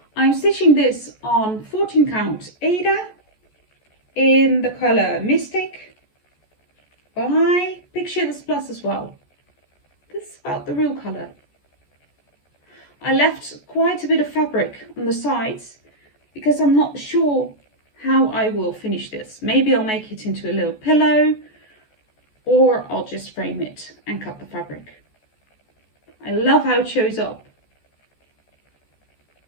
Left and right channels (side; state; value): right; late; 14 ms